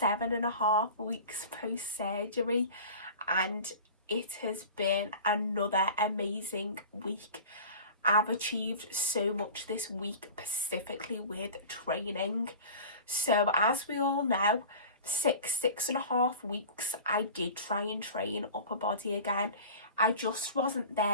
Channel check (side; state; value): both; inverted; correlation -0.37